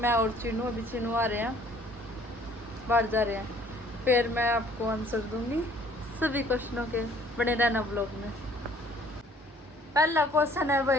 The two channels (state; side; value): normal; both; correlation 0.57